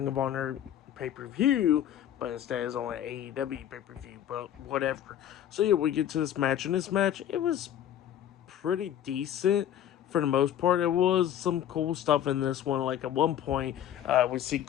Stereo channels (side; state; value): right; quieter; 10.8 dB